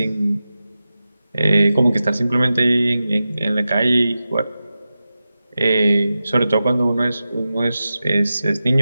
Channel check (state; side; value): inverted; both; correlation -0.93